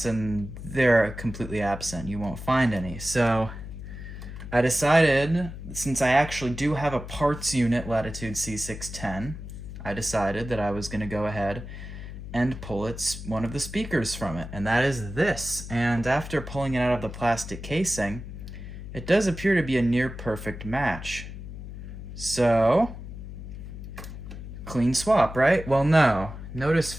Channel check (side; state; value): left; noise; hum, 10 dB below the sound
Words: and they're completely absent. You won't find any. So I decided, since I actually do have a parts unit Latitude C610, I decided that I was going to go ahead and pull one of the speakers from it, and that is this. And after pulling it out of the plastic casing, it does appear to be a near perfect match. So, clean swap, right? Well, no. Notice